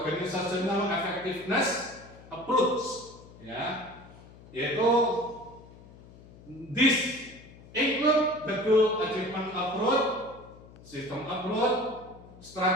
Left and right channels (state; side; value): noise; left; hum, 21 dB below the sound